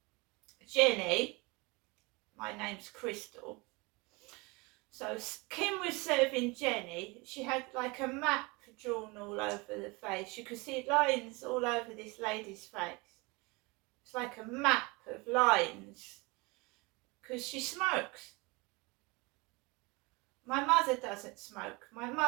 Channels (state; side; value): quieter; left; 26.1 dB